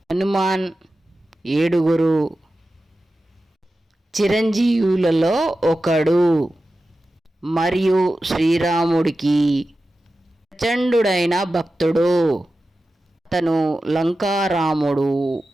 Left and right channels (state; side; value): normal; both; correlation 0.93